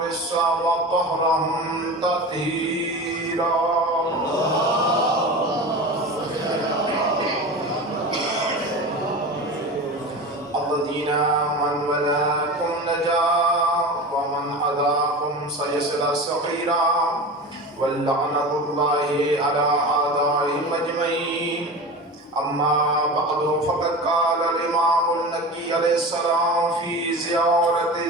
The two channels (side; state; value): both; normal; correlation 0.30